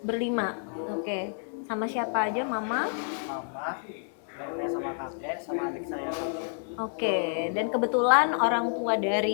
Berlima. Oke. Sama siapa aja? Mama? Sama kakek, sama adik saya. Oke, dan kebetulan orang tua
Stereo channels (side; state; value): right; silent; 58 dB below the other